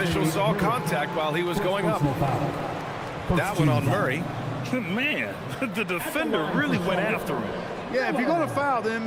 saw contact while he was going up. That one on Murray. Man, the defender really went after him. Yeah, if you're going to foul, then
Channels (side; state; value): both; identical; correlation 1.00